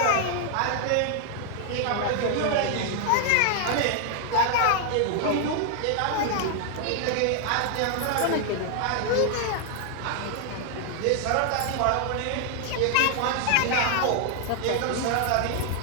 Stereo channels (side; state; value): both; different; correlation 0.00